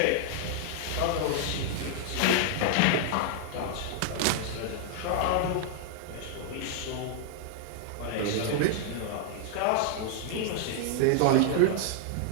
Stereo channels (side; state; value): both; different; correlation 0.00